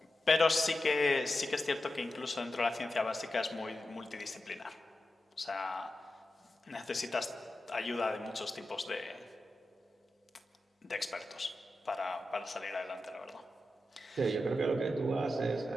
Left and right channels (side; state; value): both; normal; correlation 0.91